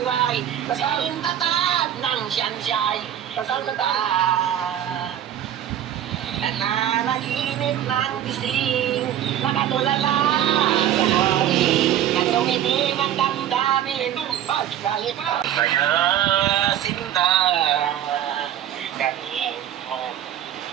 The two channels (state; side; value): quieter; left; 10.9 dB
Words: sintatag ng siyansiyay. Kasangkata, nananaginip ng gising, nakatulala sa hali, at tumitim ang damdamin, pagkalit kaya sinta, galing mo,